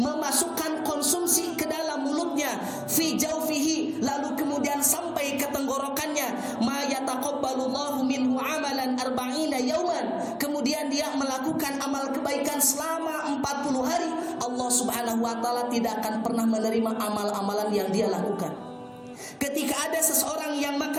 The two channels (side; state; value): both; identical; correlation 1.00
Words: konsumsi ke dalam mulutnya, fi jawfihi, lalu kemudian sampai ke tenggorokannya, ma yataqabbalullahu minhu amalan arba'ina yauman, kemudian dia melakukan amal kebaikan selama 40 hari, Allah Subhanahu wa taala tidak akan pernah menerima amal-amalan yang dia lakukan. Ketika ada seseorang yang